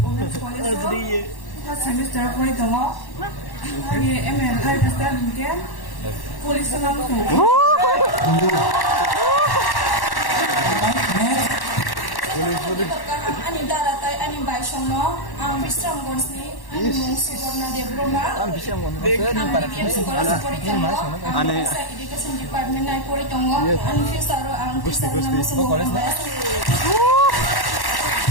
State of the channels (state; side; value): late; right; 1.1 ms